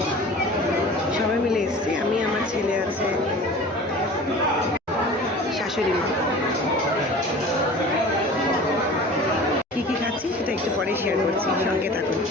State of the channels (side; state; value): both; normal; correlation 0.40